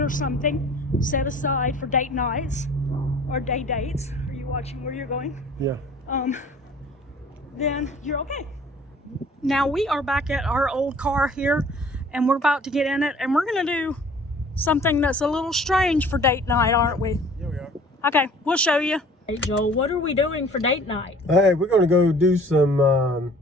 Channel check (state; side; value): normal; both; correlation 0.51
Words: or something set aside for date nights or day dates. Are you watching where you're going? Yeah. Then you're okay. Now we are back at our old car here, and we're about to get in it, and we're gonna do something that's a little strange for date night, aren't we? Yeah, we are. Okay, we'll show you. Hey Joel, what are we doing for date night? Hey, we're going to go do some